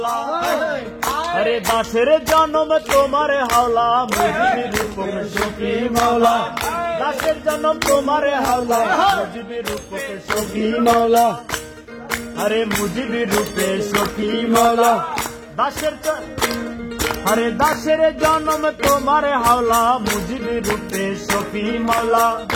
আরে দাসের জন্ম তোমার হাওলা, মুজিবের রূপক সখী মাওলা, দাসের জন্ম তোমার হাওলা, মুজিবের রূপক সখী মাওলা, আরে মুজিবের রূপে সখী মাওলা, দাসের, আরে দাসের জন্ম তোমার হাওলা, মুজিবের রূপে সখী মাওলা,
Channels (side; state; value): both; identical; correlation 1.00